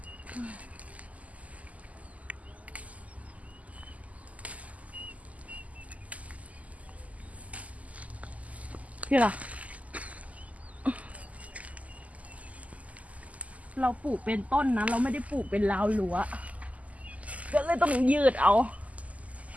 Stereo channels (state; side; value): late; left; 0.072 ms